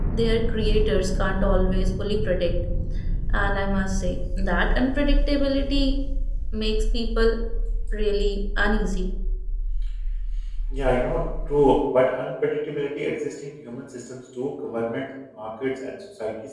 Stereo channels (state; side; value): identical; both; correlation 1.00